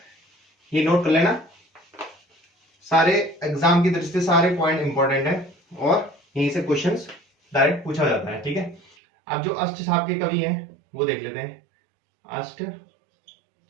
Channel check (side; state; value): left; drops out; at 9.0 s